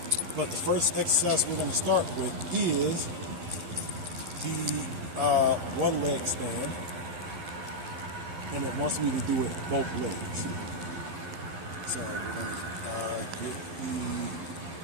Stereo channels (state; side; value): late; left; 12 ms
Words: But the first exercise we're going to start with is the one leg stand. And it wants me to do it both legs. So we're going to get